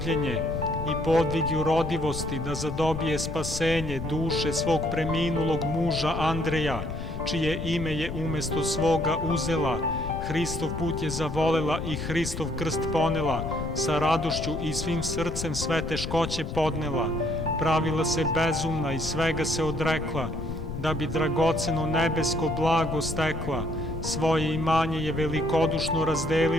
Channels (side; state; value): left; noise; rumble, 6 dB below the sound